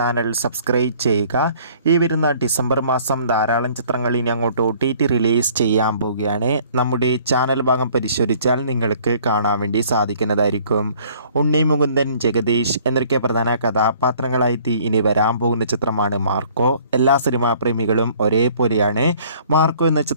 സബ്സ്ക്രൈബ് ചെയ്യുക. ഈ വരുന്ന ഡിസംബർ മാസം ധാരാളം ചിത്രങ്ങൾ ഇനി അങ്ങോട്ട് OTT റിലീസ് ചെയ്യാൻ പോവുകയാണ്. നമ്മുടെ ചാനൽ ഭാഗം പരിശോധിച്ചാൽ നിങ്ങൾക്ക് കാണാൻ വേണ്ടി സാധിക്കുന്നതായിരിക്കും. ഉണ്ണി മുകുന്ദൻ, ജഗദീഷ് എന്നൊക്കെ പ്രധാന കഥാപാത്രങ്ങളായിട്ട് ഇനി വരാൻ പോകുന്ന ചിത്രമാണ് മാർക്കോ. എല്ലാ സിനിമാ പ്രേമികളും ഒരേപോലെയാണ് മാർക്കോ എന്ന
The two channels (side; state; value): both; inverted; correlation -0.56